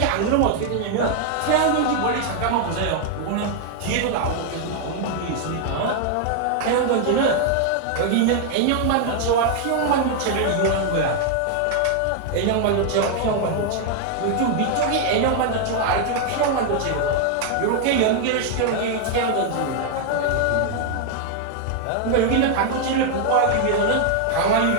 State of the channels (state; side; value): different; both; correlation 0.00